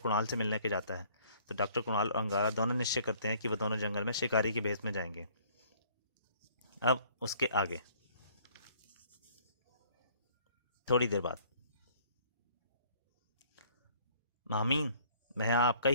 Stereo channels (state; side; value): inverted; both; correlation -0.57